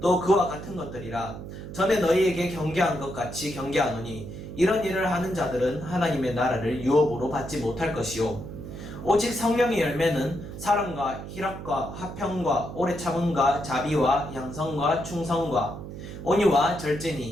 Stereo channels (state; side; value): noise; right; hum, 10 dB below the sound